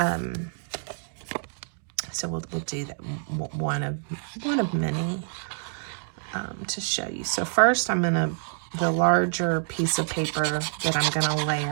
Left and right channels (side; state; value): left; silent; 60 dB below the other